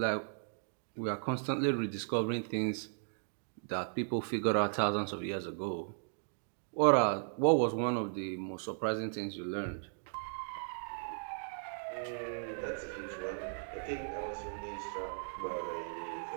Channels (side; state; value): left; silent; digital silence